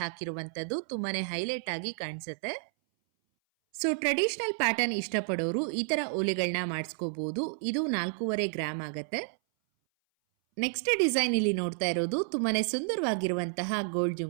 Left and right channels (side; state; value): left; silent; 57 dB below the other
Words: ಹಾಕಿರುವಂತದ್ದು ತುಂಬಾನೇ ಹೈಲೈಟ್ ಆಗಿ ಕಾಣಿಸುತ್ತೆ. ಸೊ ಟ್ರೆಡಿಷನಲ್ ಪ್ಯಾಟರ್ನ್ ಇಷ್ಟಪಡೋರು ಈ ತರ ಓಲೆಗಳನ್ನ ಮಾಡಿಸ್ಕೋಬಹುದು. ಇದು 4.5 ಗ್ರಾಮ್ ಆಗತ್ತೆ. ನೆಕ್ಸ್ಟ್ ಡಿಸೈನ್ ಇಲ್ಲಿ ನೋಡ್ತಾ ಇರೋದು ತುಂಬಾನೇ ಸುಂದರವಾಗಿರುವಂತಹ ಗೋಲ್ಡ್